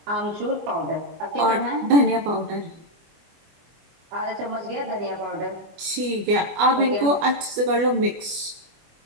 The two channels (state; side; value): late; left; 24 ms